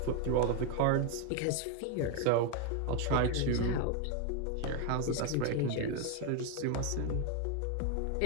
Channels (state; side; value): different; both; correlation 0.01